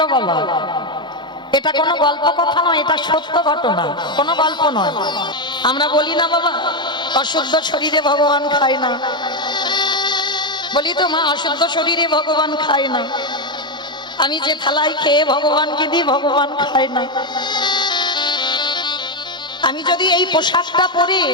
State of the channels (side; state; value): both; normal; correlation 0.07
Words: বাবা। এটা কোনো গল্প কথা নয়, এটা সত্য ঘটনা, কোনো গল্প নয়। আমরা বলি না বাবা অশুদ্ধ শরীরে ভগবান খায় না, বলি তো মা অশুদ্ধ শরীরে ভগবান খায় না। আমি যে থালায় খেয়ে ভগবানকে দিই ভগবান খায় না। আমি যদি এই পোশাকটা পরে